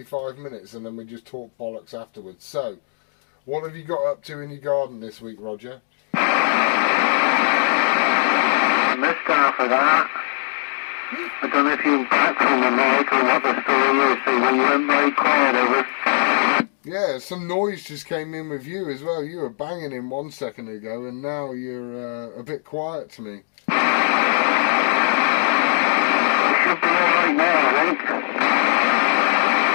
minutes and then we just talk bollocks afterwards. So, what have you got up to in your garden this week, Roger? I missed half of that. I don't know if you're back from the mic or what the story is, so you went very quiet over. Yeah, some noise just came in with you as well. You were banging in 1 second ago and now you're a bit quiet to me. You should be alright now, I think.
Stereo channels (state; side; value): silent; right; digital silence